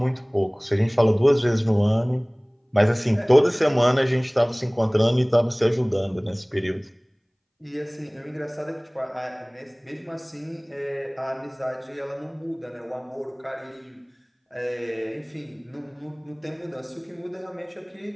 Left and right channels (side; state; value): both; identical; correlation 1.00